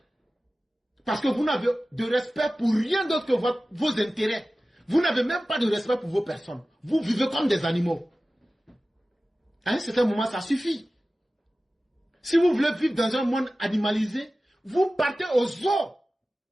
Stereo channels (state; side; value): normal; both; correlation 0.96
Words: Parce que vous n'avez de respect pour rien d'autre que vos intérêts. Vous n'avez même pas de respect pour vos personnes. Vous vivez comme des animaux. À un certain moment, ça suffit. Si vous voulez vivre dans un monde animalisé, vous partez au zoo